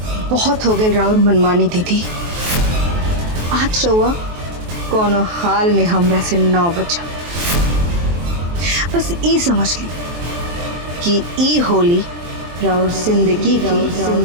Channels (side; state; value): left; late; 23 ms